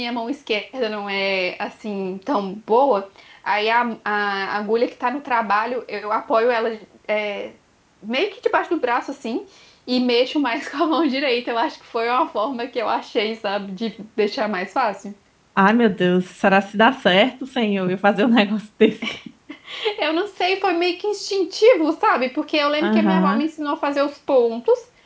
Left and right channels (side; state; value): both; identical; correlation 1.00